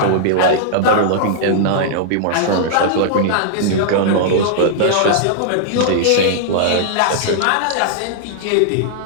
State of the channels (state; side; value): different; both; correlation -0.01